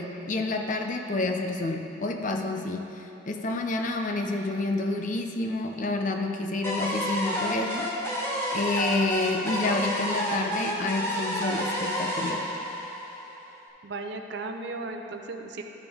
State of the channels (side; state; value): both; normal; correlation 0.38